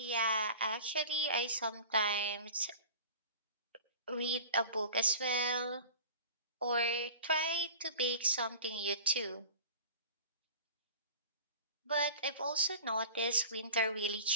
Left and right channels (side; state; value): both; inverted; correlation -0.39